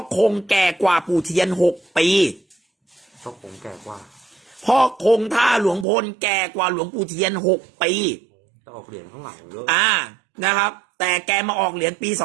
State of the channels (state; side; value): drops out; left; at 5.9 s